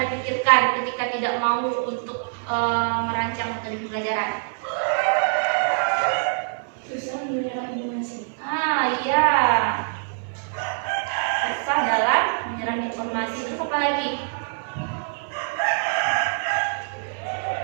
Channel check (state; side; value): silent; left; digital silence